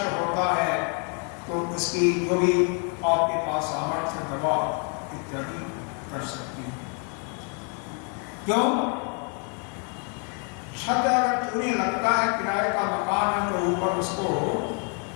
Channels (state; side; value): quieter; right; 36.8 dB